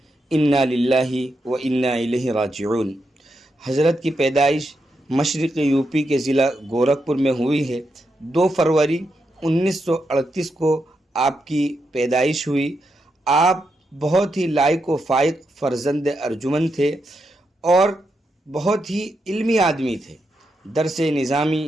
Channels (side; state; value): both; normal; correlation 0.84